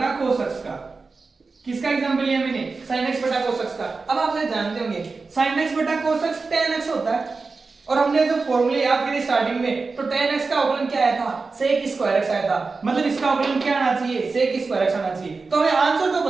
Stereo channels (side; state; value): left; quieter; 4.2 dB